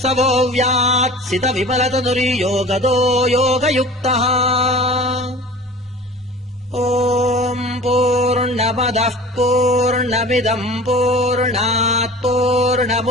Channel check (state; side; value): normal; both; correlation 0.40